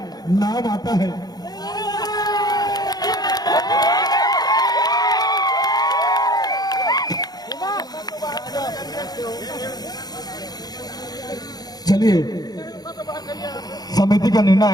चलिए समिति का निर्णय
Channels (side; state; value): right; late; 0.19 ms